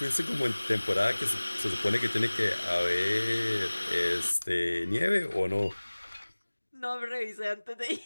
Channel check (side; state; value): both; inverted; correlation -1.00